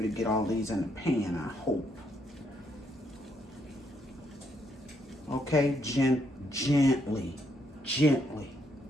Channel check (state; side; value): normal; both; correlation 0.74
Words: to get all these in the pan, I hope. Okay, gently.